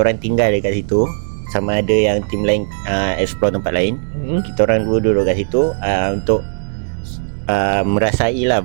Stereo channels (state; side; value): silent; left; digital silence